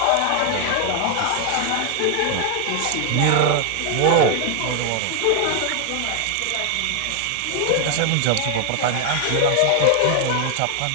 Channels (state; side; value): different; both; correlation 0.00